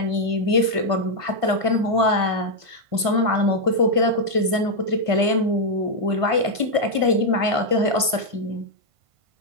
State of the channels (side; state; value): left; late; 1.5 ms